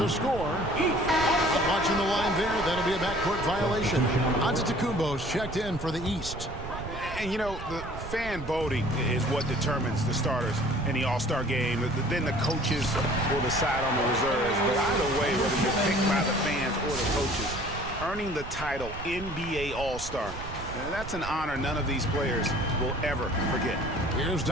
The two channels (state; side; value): noise; right; rumble, 10 dB below the sound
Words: score. Watching the line there, that'll be a backcourt violation. Antetokounmpo's checked in for the East. And, you know, the fan voting is what determines the starters in the All-Star game. Then the coaches will decide on the reserves. But either way, whether you're picked by the fans or the coaches, earning the title NBA All-Star, that's an honor none of these players will ever forget. Here's